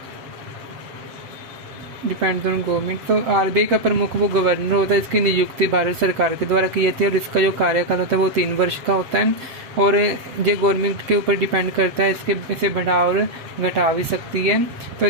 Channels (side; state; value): left; late; 7.9 ms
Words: depends on government. तो आरबीआई का प्रमुख वो गवर्नर होता है, इसकी नियुक्ति भारत सरकार के द्वारा की जाती है, और इसका जो कार्यकाल होता है वो 3 वर्ष का होता है, और जो गवर्नमेंट के ऊपर डिपेंड करता है, इसे बढ़ा और घटा भी सकती है। तो